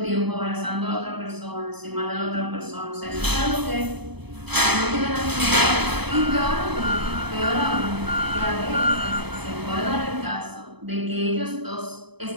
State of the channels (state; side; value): late; left; 0.98 ms